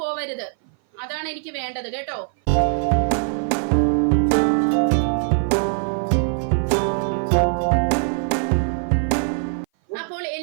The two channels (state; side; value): silent; left; 58 dB below the other